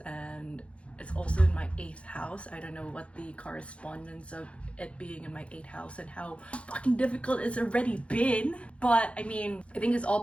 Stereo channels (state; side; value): late; right; 0.061 ms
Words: it's also in my 8th house. I don't know what the correspondence of it being in my 8th house and how fucking difficult it's already been. But I mean, I think it's all